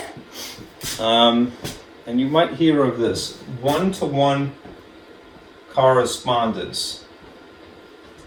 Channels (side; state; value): both; identical; correlation 1.00